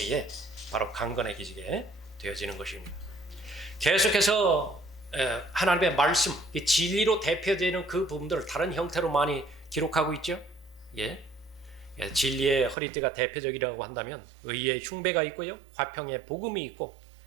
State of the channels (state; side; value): drops out; left; at 12.8 s